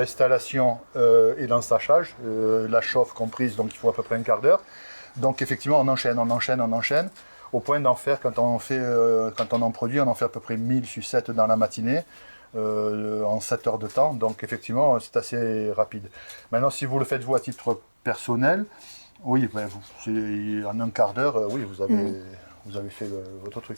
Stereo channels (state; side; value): inverted; both; correlation -1.00